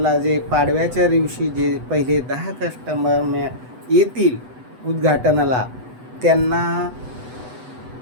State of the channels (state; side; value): late; left; 8.0 ms